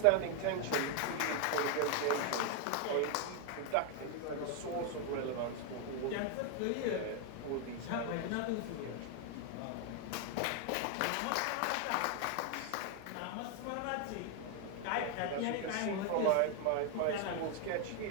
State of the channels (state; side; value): different; both; correlation 0.01